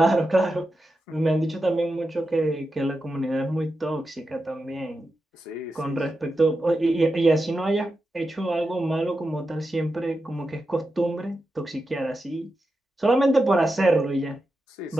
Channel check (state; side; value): normal; both; correlation 0.89